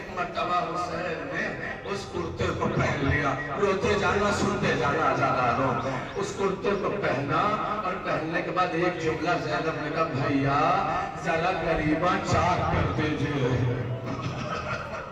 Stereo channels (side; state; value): both; identical; correlation 1.00